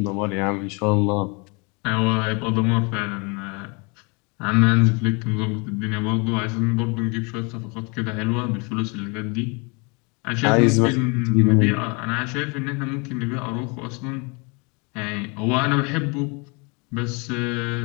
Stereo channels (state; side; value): quieter; right; 31.2 dB